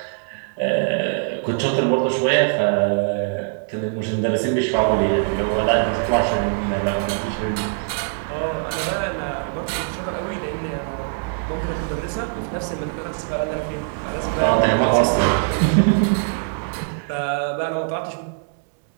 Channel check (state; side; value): silent; left; digital silence